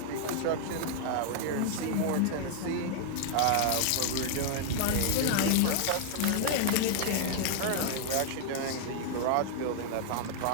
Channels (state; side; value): different; both; correlation 0.00